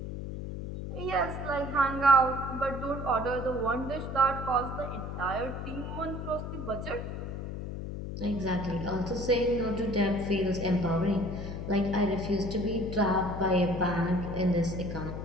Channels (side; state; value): left; noise; hum, 6 dB below the sound